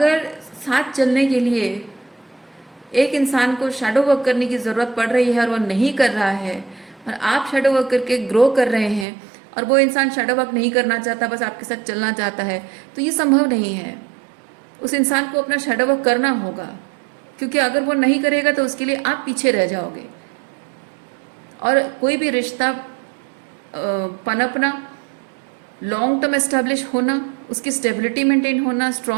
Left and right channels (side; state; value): left; drops out; at 9.1 s